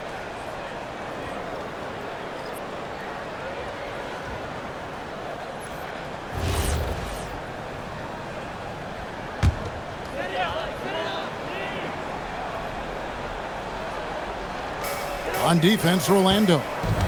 On defense, Orlando.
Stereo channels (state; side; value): identical; both; correlation 1.00